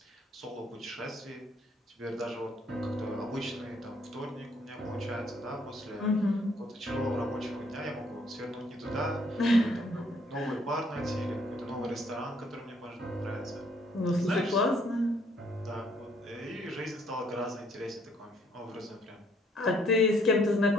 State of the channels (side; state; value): both; normal; correlation 0.66